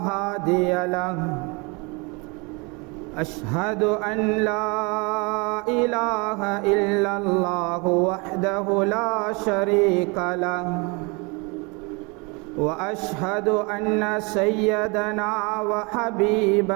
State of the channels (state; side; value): quieter; left; 29.4 dB